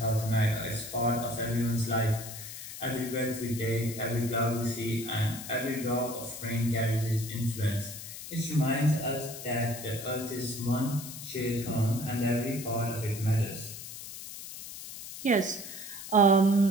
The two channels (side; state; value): left; noise; hiss, 11 dB below the sound